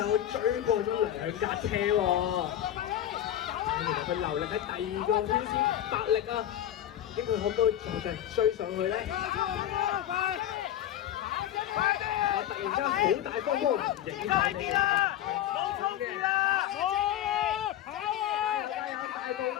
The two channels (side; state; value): right; quieter; 11.8 dB